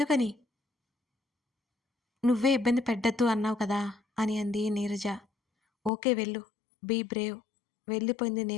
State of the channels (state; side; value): drops out; right; at 5.9 s